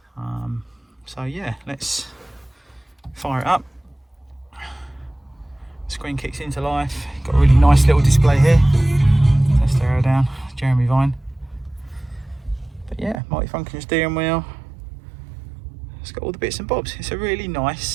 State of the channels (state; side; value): drops out; left; at 13.2 s